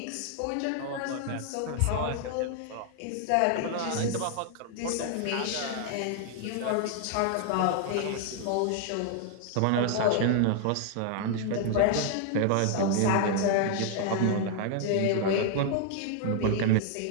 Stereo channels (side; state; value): both; different; correlation 0.00